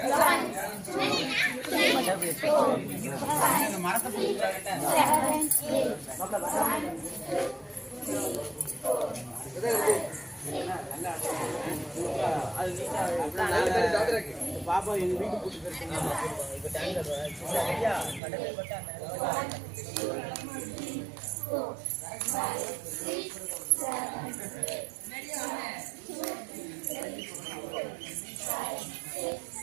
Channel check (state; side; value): drops out; left; at 18.2 s